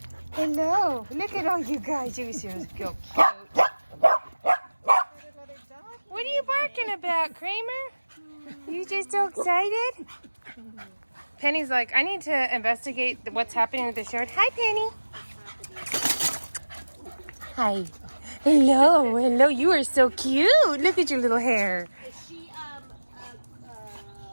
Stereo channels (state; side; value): inverted; both; correlation -1.00